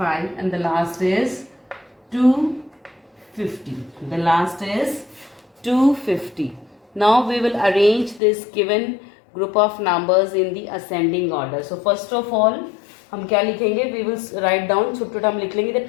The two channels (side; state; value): right; drops out; at 8.2 s